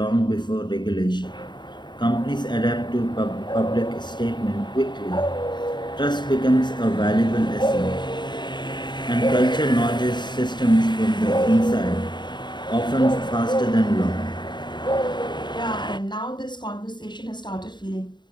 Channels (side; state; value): right; late; 0.22 ms